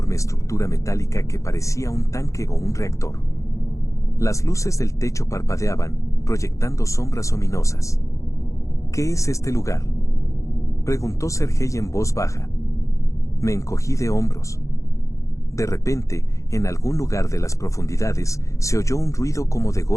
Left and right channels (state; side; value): late; right; 0.15 ms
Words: estructura metálica que parecía un tanque o un reactor. Las luces del techo parpadeaban, proyectando sombras ominosas. ¿Qué es este lugar?, preguntó Sergei en voz baja. Me encogí de hombros. De repente, en algún lugar de las profundidades, se oyó un ruido como de